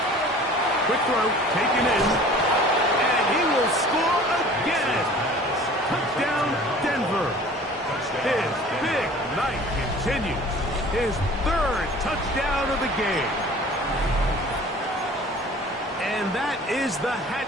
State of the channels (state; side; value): normal; both; correlation 0.46